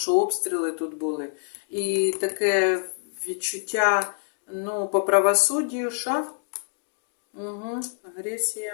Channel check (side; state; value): right; silent; digital silence